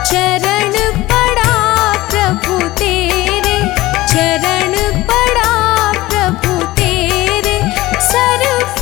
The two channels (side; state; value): right; quieter; 18.2 dB